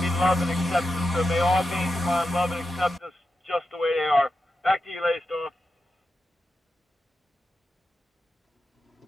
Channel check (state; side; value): normal; both; correlation 0.89